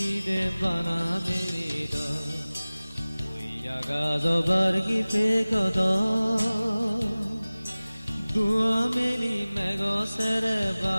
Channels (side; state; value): both; inverted; correlation -0.98